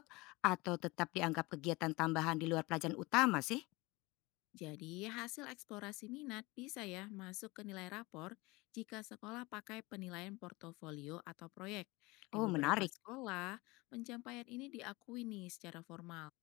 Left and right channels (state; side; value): quieter; right; 23.3 dB